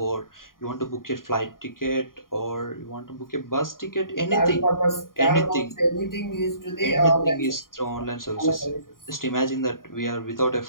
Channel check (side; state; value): right; late; 0.91 ms